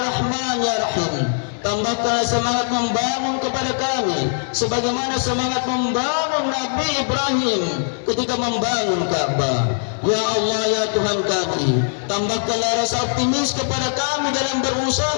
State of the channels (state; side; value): silent; right; digital silence